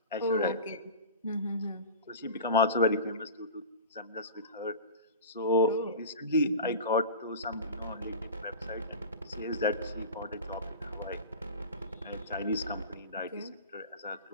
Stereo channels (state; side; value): inverted; both; correlation -0.31